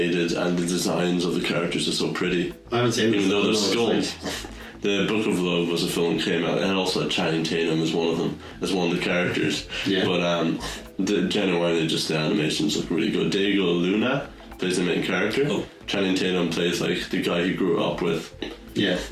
and the designs of the characters are so pretty. I haven't seen it. Even though they're No, it's skulls. The Book of Love was a film that came out, and also had Channing Tatum as one of them, as one of the characters. Yeah. But genuinely, just the animations look really good. Diego Luna plays the main character. Oh. Channing Tatum plays like the guy he grew up with, Yeah.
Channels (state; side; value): identical; both; correlation 1.00